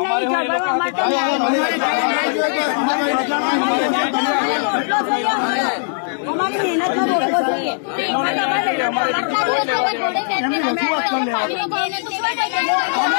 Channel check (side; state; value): right; silent; digital silence